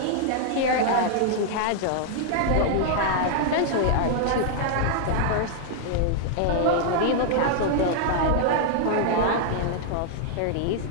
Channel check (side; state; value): both; different; correlation -0.01